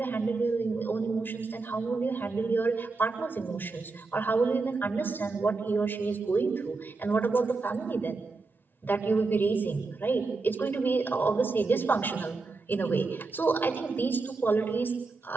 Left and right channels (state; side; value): quieter; left; 3.9 dB